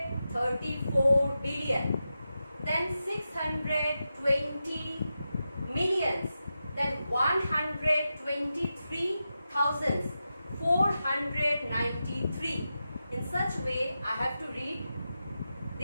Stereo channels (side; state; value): both; inverted; correlation -0.90